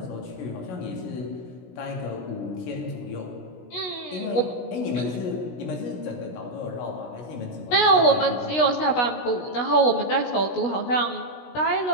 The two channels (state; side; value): late; right; 16 ms